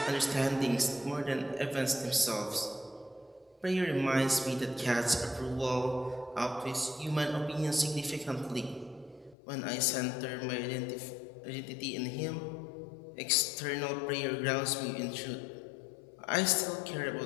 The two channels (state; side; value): drops out; right; at 9.3 s